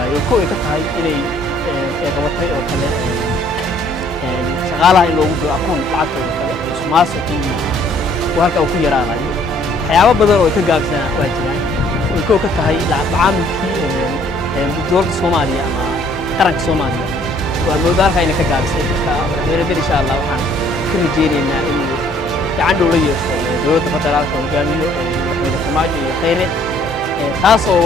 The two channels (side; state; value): both; normal; correlation 0.61